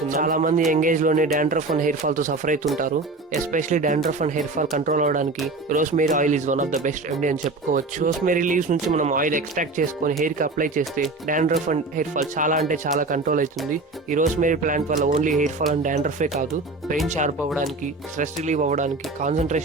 చాలా మంది యంగ్ ఏజ్ లోనే డాండ్రఫ్ అండ్ హెయిర్ ఫాల్ తో సఫర్ అవుతుంటారు. Especially dandruff and hair fall control అవడానికి rosemary oil is one of the best remedy అని చెప్పుకోవచ్చు. రోస్మేరీ లీవ్స్ నుంచి మనం ఆయిల్ ఎక్స్ట్రాక్ట్ చేసుకొని హెయిర్ కి అప్లై చేస్తే డాండ్రఫ్ అండ్ హెయిర్ ఫాల్ చాలా కంట్రోల్ అవుతుంది. ఈ రోస్మేరీ ప్లాంట్ వల్ల ఓన్లీ హెయిర్ ఫాల్ అండ్ డాండ్రఫే కాదు, బ్రెయిన్ షార్ప్ అవ్వడానికి, స్ట్రెస్ రిలీవ్ అవ్వడానికి,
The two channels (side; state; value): left; quieter; 3.4 dB